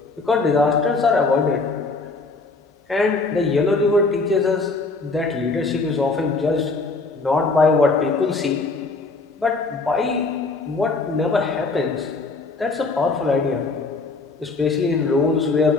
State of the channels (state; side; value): quieter; right; 3.8 dB